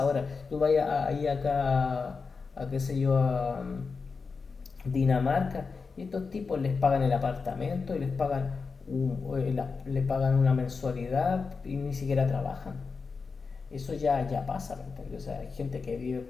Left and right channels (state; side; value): quieter; right; 4.8 dB